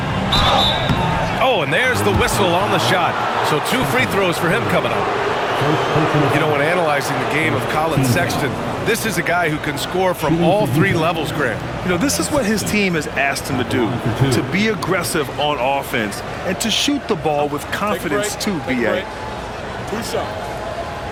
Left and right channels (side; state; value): both; identical; correlation 1.00